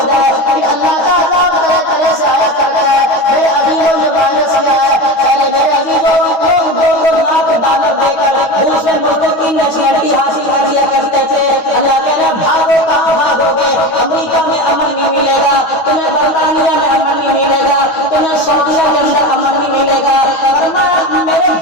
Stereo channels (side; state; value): right; late; 9.4 ms